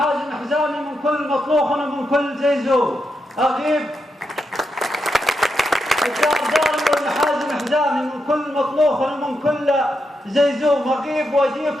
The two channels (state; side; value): normal; both; correlation 0.84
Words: حزامي، من كل مطلوخ ومن كل زيزوم اغيب، الدار داري والمحازن حزامي، من كل مطلوخ ومن كل زيزوم اغيب،